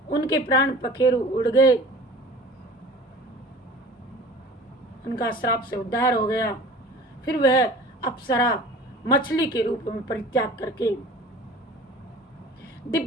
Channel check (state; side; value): normal; both; correlation 0.42